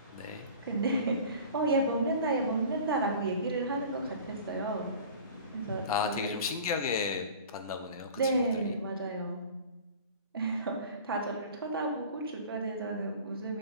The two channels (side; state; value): both; inverted; correlation -0.41